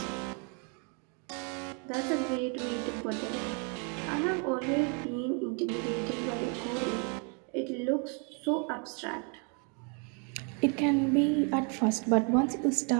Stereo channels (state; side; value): quieter; left; 37.4 dB